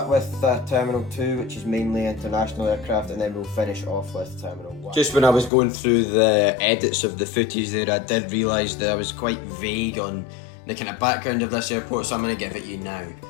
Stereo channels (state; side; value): drops out; right; at 5.5 s